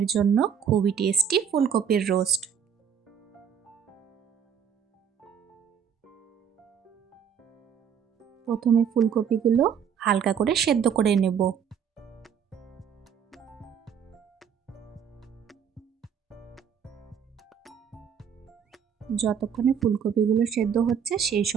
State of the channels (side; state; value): left; quieter; 7.8 dB